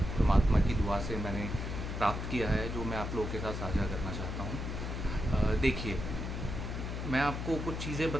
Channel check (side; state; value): left; noise; hum, 4 dB below the sound